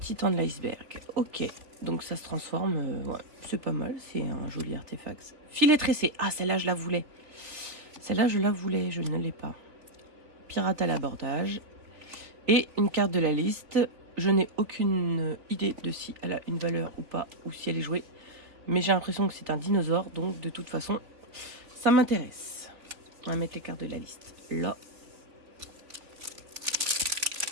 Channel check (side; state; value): left; late; 3.4 ms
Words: de l'iceberg. Ok, donc ça se transforme. Ouais, c'est pas mal, c'est un joli artefact. Filet tressé. Ah, celle-là, je la voulais. Celle-là, je la voulais, je ne l'ai pas. Pirate à l'abordage. Et une carte de la liste. Je n'ai aucune idée de si elle a une valeur ou pas, ou si elle est jouée. Mais j'ai l'impression que c'est un dinosaure, donc de toute façon, ça m'intéresse. On va mettre les cartes de la liste là.